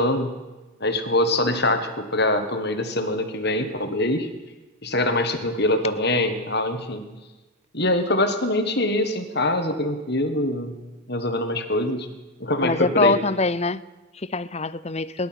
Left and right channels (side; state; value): both; normal; correlation 0.02